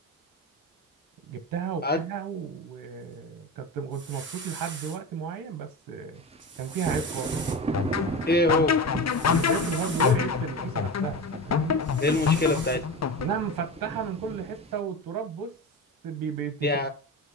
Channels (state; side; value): normal; both; correlation 0.25